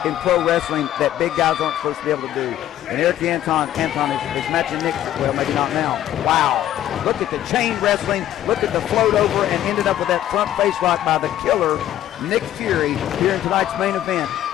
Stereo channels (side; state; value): right; quieter; 12.4 dB